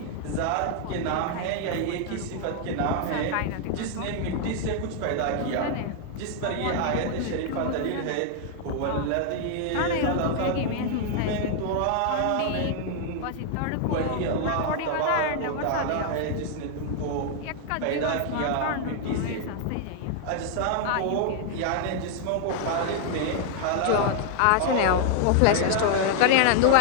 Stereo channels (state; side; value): different; both; correlation 0.00